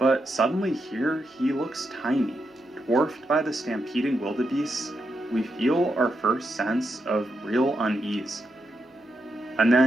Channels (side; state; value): both; normal; correlation 0.84